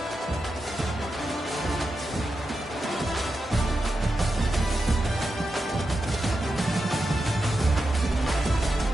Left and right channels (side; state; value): both; normal; correlation 0.89